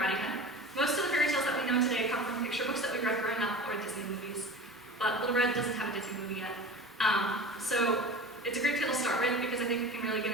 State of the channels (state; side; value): normal; both; correlation 0.35